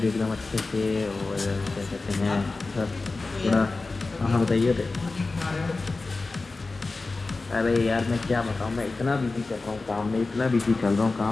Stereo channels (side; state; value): right; quieter; 3.6 dB